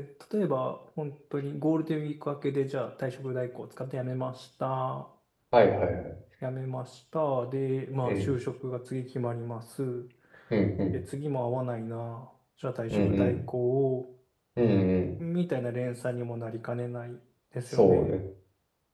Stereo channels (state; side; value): identical; both; correlation 1.00